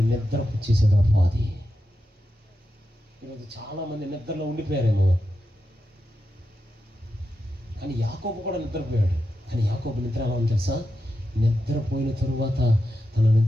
నిద్ర పుచ్చేసాడు అపవాది. ఈరోజు చాలా మంది నిద్రలో ఉండిపోయారేమో. కానీ యాకోబు కూడా నిద్రపోయాడు. కానీ యాకోబు నిద్ర ఎలా ఉంది తెలుసా? నిద్రపోయిన తరువాత తన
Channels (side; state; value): both; normal; correlation 0.88